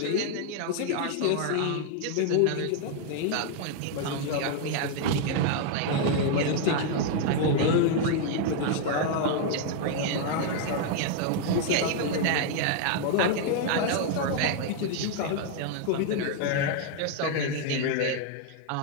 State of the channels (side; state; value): both; different; correlation 0.00